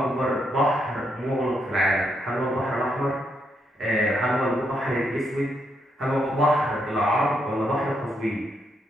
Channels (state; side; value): normal; both; correlation 0.78